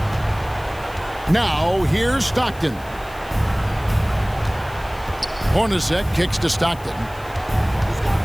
Now, here's Stockton. Hornacek kicks to Stockton.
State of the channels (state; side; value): noise; left; hiss, 22 dB below the sound